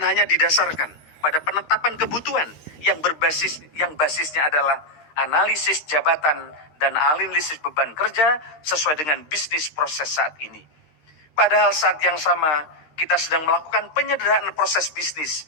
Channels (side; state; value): right; late; 13 ms